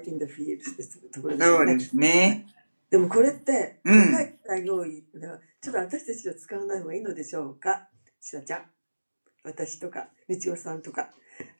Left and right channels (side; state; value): both; inverted; correlation -1.00